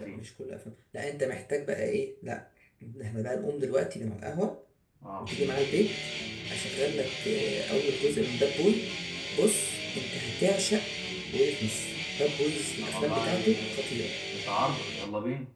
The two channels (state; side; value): identical; both; correlation 1.00